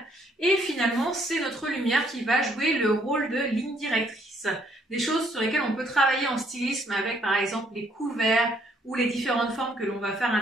et finalement c'est notre lumière qui va jouer le rôle de ligne directrice. Des choses sur lesquelles on peut travailler en stylisme avec par exemple les couverts ou les différentes formes que l'on va faire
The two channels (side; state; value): both; normal; correlation 0.68